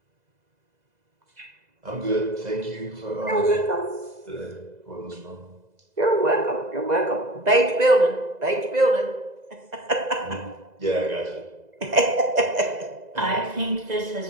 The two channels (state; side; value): late; left; 2.0 ms